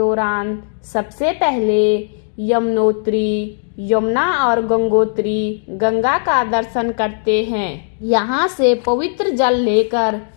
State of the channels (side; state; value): right; silent; digital silence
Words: सबसे पहले यमुनोत्री, यमुना और गंगोत्री गंगा का दर्शन करते हैं। यहाँ से पवित्र जल लेकर